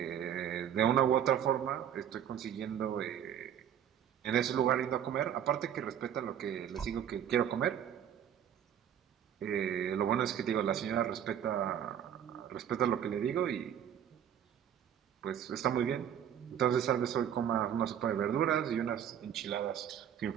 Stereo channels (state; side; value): quieter; left; 9.5 dB